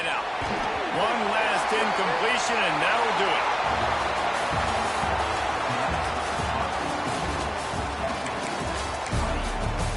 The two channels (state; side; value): identical; both; correlation 1.00